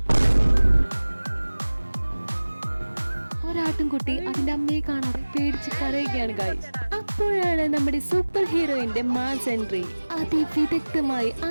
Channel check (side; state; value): both; inverted; correlation -1.00